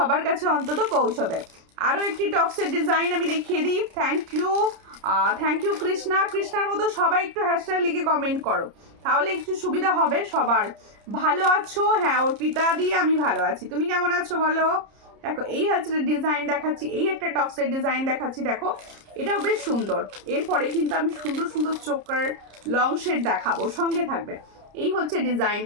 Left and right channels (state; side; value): late; left; 30 ms